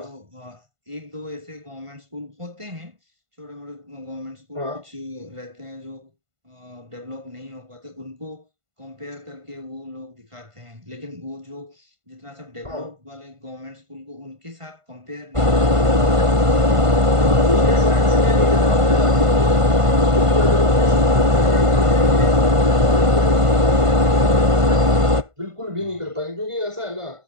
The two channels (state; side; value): late; left; 1.5 ms